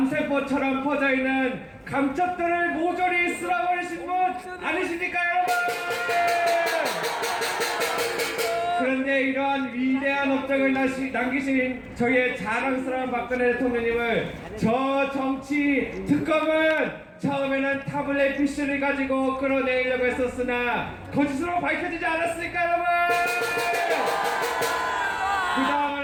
퍼져있는 감첩들을 모조리 쓸어버리신 분 아니십니까 여러분? 그런데 우리에게 이러한 위대한 업적을 남기신 저희의 자랑스러운 박근혜 대통령님을 저 정치 특검은 처음에는 타블렛 PC를 가지고 끌어내려고 했었으나 거짓으로 밝혀지지 않았습니까, 여러분? 그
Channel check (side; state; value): both; identical; correlation 1.00